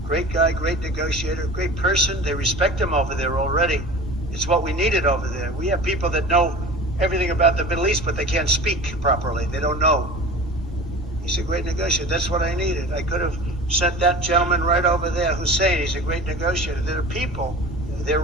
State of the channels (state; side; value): normal; both; correlation 0.37